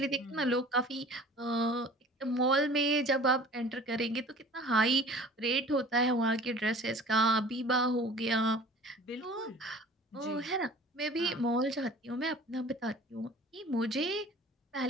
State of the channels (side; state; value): both; normal; correlation 0.45